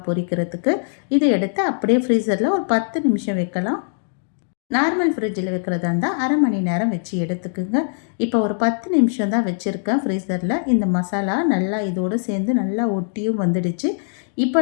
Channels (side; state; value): right; silent; digital silence